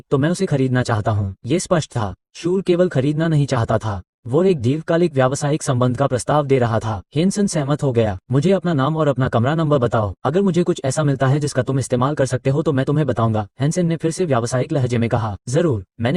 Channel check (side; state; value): both; identical; correlation 1.00